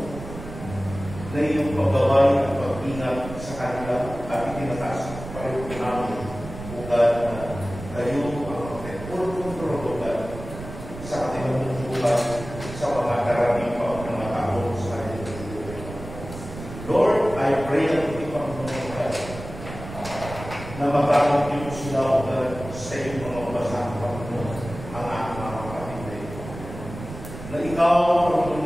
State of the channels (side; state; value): right; noise; rumble, 11 dB below the sound